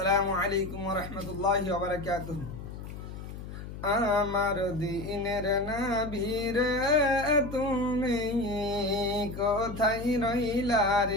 আলাইকুম ওয়া রাহমাতুল্লাহি ওয়া বারাকাতুহু। আমার দিনের নবী রে তুমি কোথায় রইলা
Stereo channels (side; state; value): left; noise; hum, 10 dB below the sound